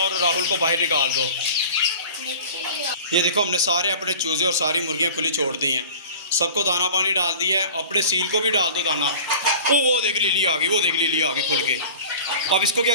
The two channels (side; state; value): both; inverted; correlation -0.40